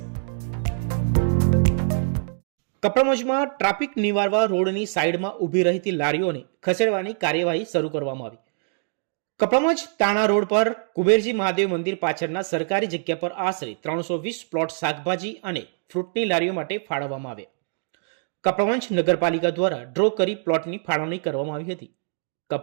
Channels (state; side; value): silent; left; digital silence